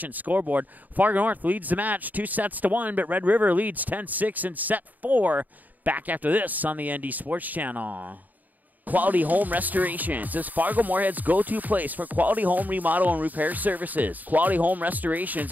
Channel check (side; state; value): left; late; 0.082 ms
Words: scoreboard. Fargo North leads the match 2-1, but Red River leads 10-6 in set 4. Back after this on the ND Sports Channel. Quality Home Restorations is Fargo Moorhead's go-to place for quality home remodel and repair services. Quality Home Restorations